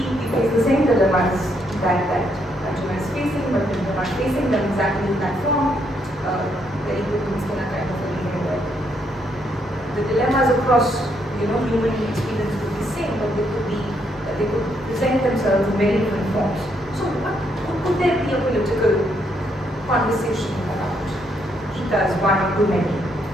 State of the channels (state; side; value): normal; both; correlation 0.74